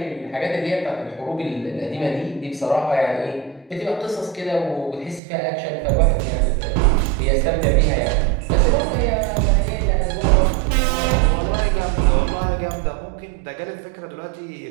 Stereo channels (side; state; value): left; drops out; at 5.2 s